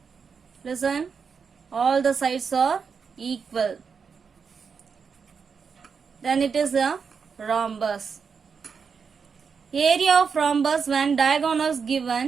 Listen, all the sides are equal, then it is a rhombus. Area of rhombus when diagonals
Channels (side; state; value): left; quieter; 5.9 dB